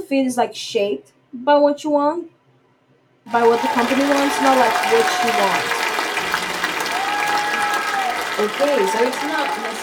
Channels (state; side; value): identical; both; correlation 1.00